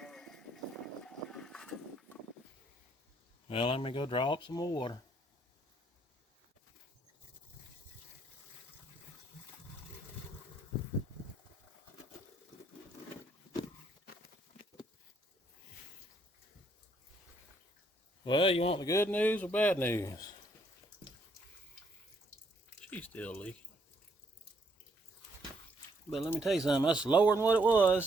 Well, let me go draw up some more water. Well, you want the good news or bad news? She's still leaking. But let me tell you something, that's lower than what it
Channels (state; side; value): normal; both; correlation 0.70